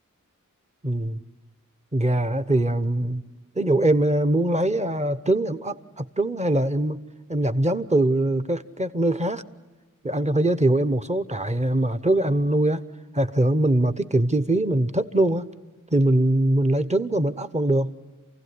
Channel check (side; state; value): both; normal; correlation 0.80